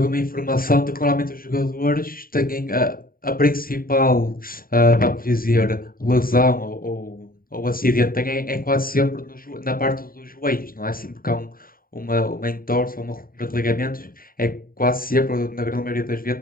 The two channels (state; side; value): late; right; 0.42 ms